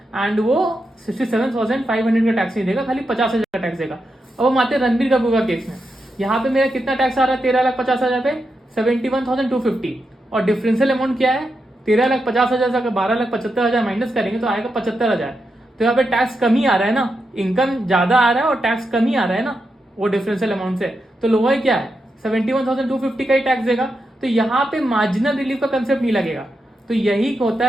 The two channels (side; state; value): both; normal; correlation 0.86